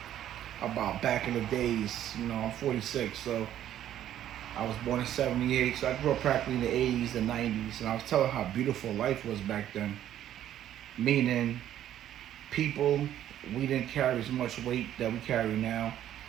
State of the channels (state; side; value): quieter; left; 11.5 dB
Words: about back in the days. You know, I'm 46, so I was born in 78, so I grew up practically in the 80s and 90s, and I was telling how beautiful life was back then. Meaning, people, we didn't carry as much weight that we carry now